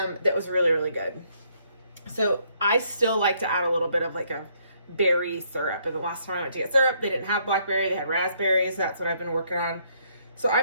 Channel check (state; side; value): inverted; both; correlation -0.69